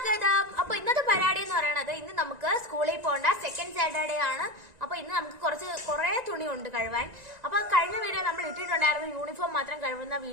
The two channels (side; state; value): left; late; 1.9 ms